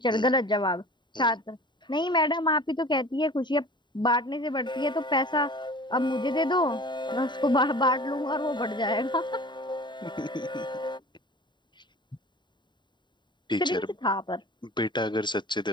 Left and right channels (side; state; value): right; late; 0.22 ms